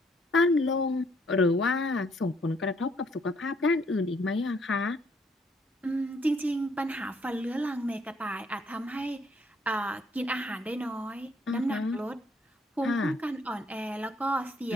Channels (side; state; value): both; normal; correlation 0.67